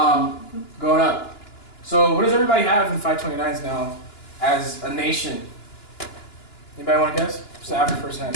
going up. So what does everybody have in 529s now as a nation? Anybody want to guess? What's the average person has?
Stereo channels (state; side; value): late; right; 2.9 ms